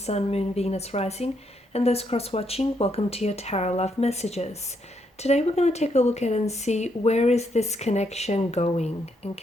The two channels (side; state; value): both; normal; correlation 0.76